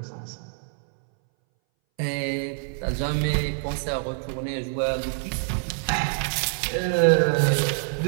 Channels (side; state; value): left; silent; 60 dB below the other